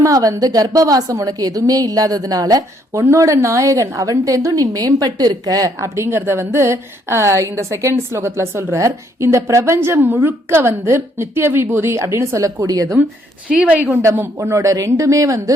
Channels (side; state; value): both; normal; correlation 0.69